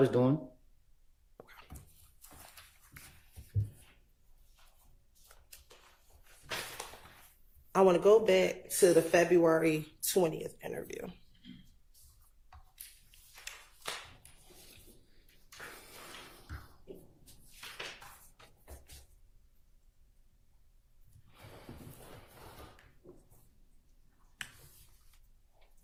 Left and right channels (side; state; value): both; identical; correlation 1.00